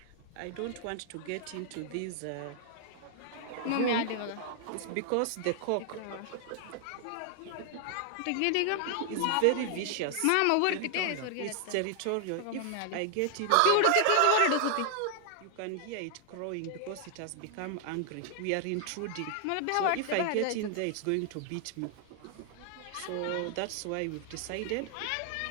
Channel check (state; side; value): different; both; correlation 0.00